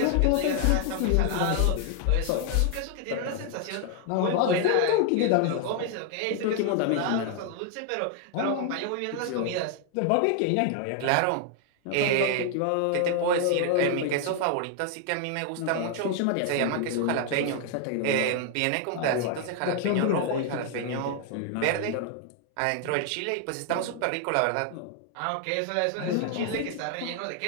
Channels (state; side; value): different; both; correlation 0.00